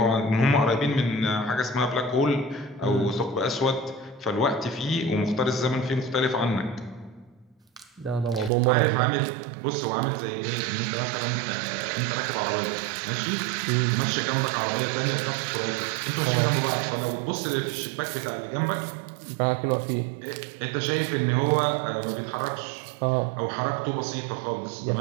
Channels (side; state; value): left; drops out; at 8.5 s